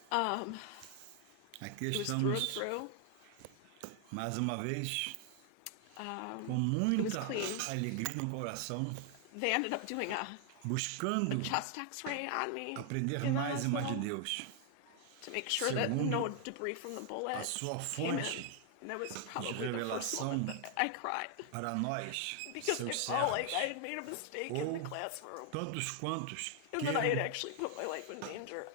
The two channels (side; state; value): both; different; correlation 0.00